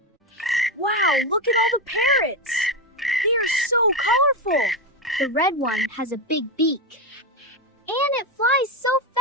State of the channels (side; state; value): both; normal; correlation 0.12